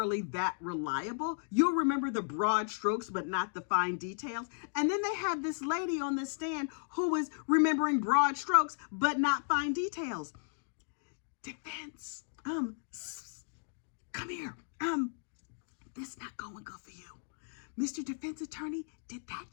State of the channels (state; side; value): silent; right; digital silence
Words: that reliable. You'll remember the broad strokes, but not the fine details. And then they had this lady on the stand who was remembering broad strokes, but not fine details. Defense, come here. This not going good for you. Mr. Defense Attorney, did that